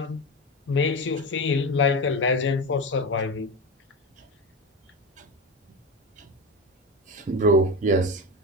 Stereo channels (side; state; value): both; normal; correlation 0.21